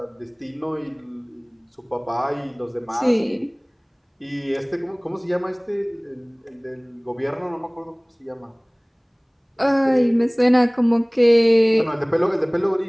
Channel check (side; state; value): both; identical; correlation 1.00